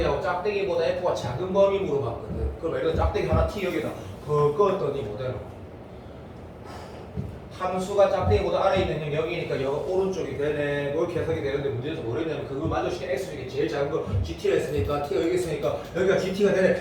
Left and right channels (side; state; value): both; identical; correlation 1.00